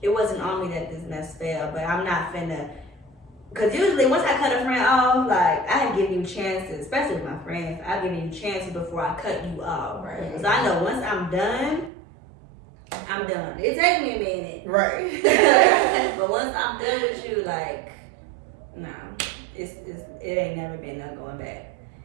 it wasn't on me that this mess fell, but I'm not finna. Because usually once I cut a friend off, like, I give you chances, especially with my friends. I give you chances before I cut you off. Right. So I know once I'm done, I'm done. It takes me a minute. Right. But once I'm done with you, like, no, it ain't never been no going back.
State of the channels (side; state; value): left; drops out; at 11.9 s